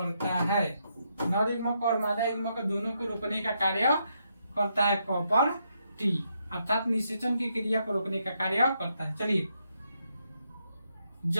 है। नर युग्मक और मादा युग्मक दोनों को रोकने का कार्य करता है कॉपर टी, अर्थात निषेचन की क्रिया को रोकने का कार्य करता है। चलिए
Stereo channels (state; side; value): inverted; both; correlation -0.79